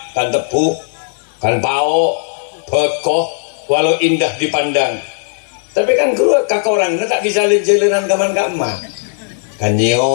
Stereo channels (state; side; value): silent; right; 66 dB below the other